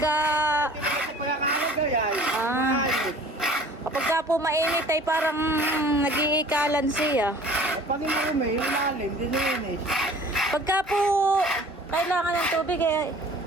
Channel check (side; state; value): both; normal; correlation 0.48